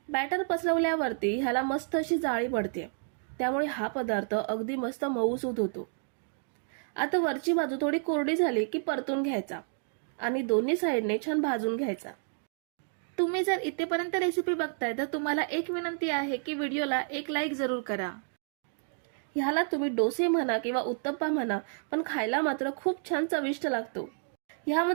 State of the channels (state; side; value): silent; left; 58 dB below the other